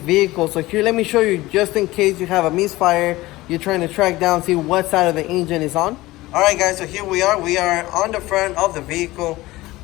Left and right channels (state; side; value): quieter; right; 18.7 dB